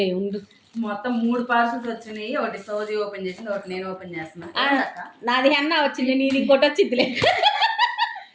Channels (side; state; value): both; identical; correlation 1.00